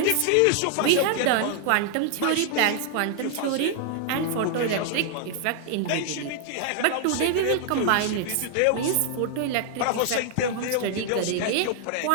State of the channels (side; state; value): both; different; correlation 0.00